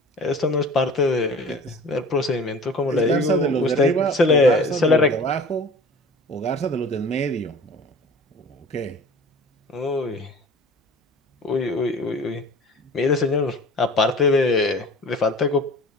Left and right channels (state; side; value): normal; both; correlation 0.42